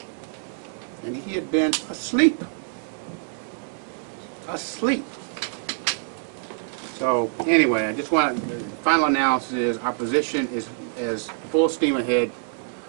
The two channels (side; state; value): left; silent; digital silence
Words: And he had been asleep. Asleep. So anyway, I just want to, the final analysis is our position is full steam ahead.